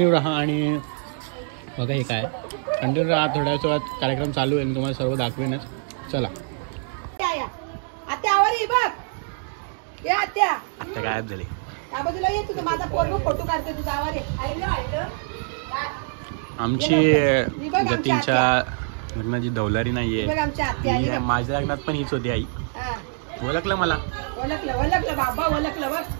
राहा आणि बघा हे काय कंटिन्यू राहा. थोड्याच वेळात कार्यक्रम चालू आहे, तुम्हाला सर्व दाखवेनच. चला. आता गायब झाले. आमची जतीनच्या लग्नाची धवलारी नाहीये. माझ्या लग्नात पण हीच होती आई. ओळखलं मला.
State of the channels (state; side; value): silent; left; 62 dB below the other